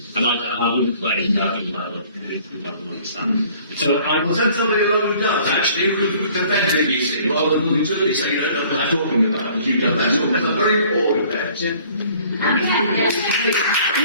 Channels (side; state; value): both; inverted; correlation -0.54